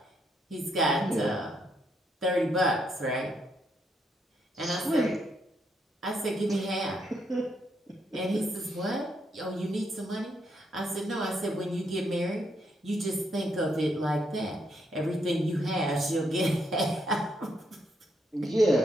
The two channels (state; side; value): normal; both; correlation 0.76